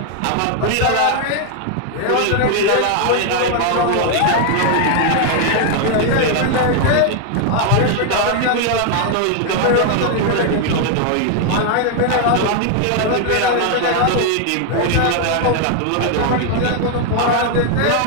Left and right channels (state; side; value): different; both; correlation 0.00